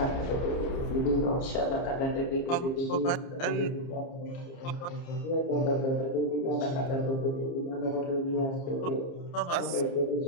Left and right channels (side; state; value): right; late; 29 ms